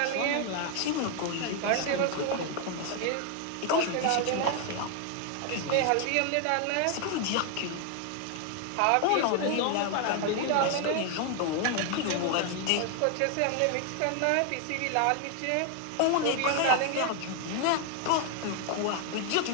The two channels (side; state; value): both; different; correlation 0.00